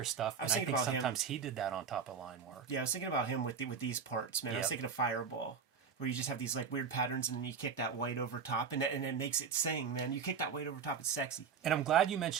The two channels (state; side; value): quieter; left; 6.2 dB